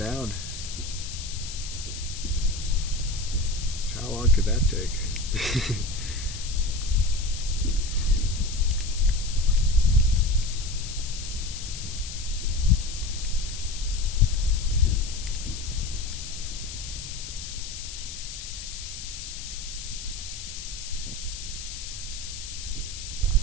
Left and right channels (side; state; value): left; noise; hiss, 9 dB below the sound